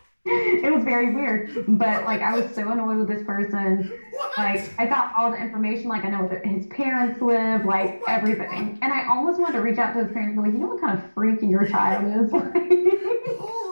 It was very weird. But, like, I was so annoyed with this person. What? Like, I got all the information. Like, I know where his parents live, like, everything. And I almost wanted to reach out to his parents and be like, you know what kind of freak your child is?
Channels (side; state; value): both; inverted; correlation -1.00